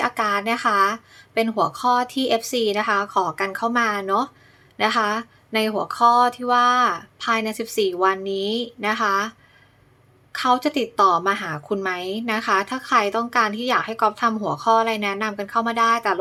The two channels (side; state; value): both; identical; correlation 1.00